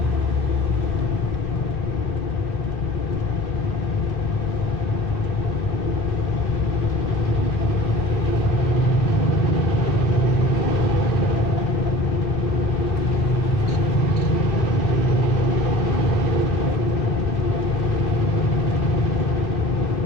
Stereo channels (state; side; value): normal; both; correlation 0.42